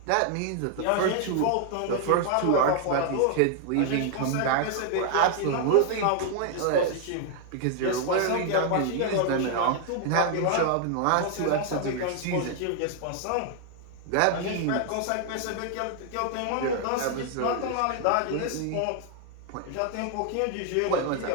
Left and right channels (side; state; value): both; different; correlation 0.00